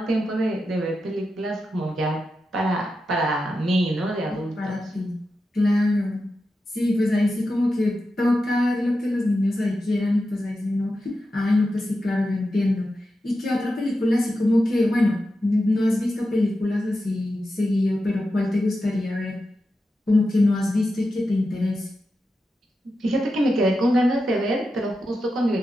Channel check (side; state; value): both; normal; correlation 0.90